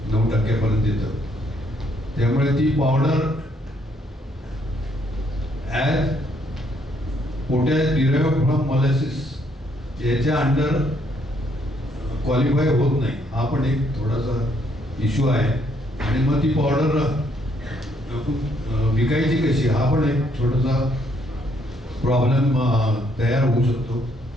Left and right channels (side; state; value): both; normal; correlation 0.70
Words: 9% येतं. त्यामुळे ती powder as potash derived from molasses याच्या अंडर क्वालिफाय होत नाही. हा पण एक थोडासा इश्यू आहे आणि मग ती पावडर विकायची कशी हा पण एक छोटासा प्रॉब्लेम तयार होऊ शकतो.